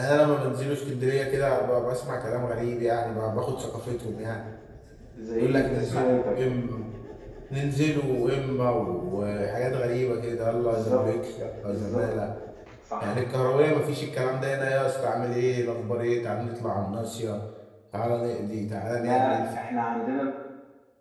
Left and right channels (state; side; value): identical; both; correlation 1.00